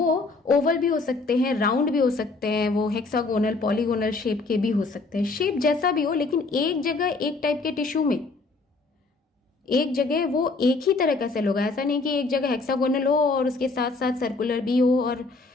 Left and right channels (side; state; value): right; quieter; 3.7 dB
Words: ओवल भी हो सकते हैं, राउंड भी हो सकते हैं, वो हेक्सागोनल, पॉलीगोनल शेप के भी हो सकते हैं। शेप जैसा भी हो, लेकिन एक जगह एक टाइप के टिश्यू में एक जगह वो एक ही तरह का सेल होगा। ऐसा नहीं कि एक जगह हेक्सागोनल हो और उसके साथ साथ सर्कुलर भी हो और